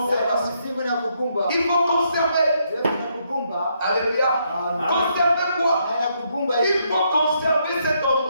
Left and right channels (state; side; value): inverted; both; correlation -0.75